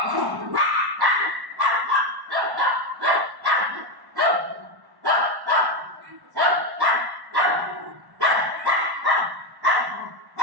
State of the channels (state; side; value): late; left; 1.1 ms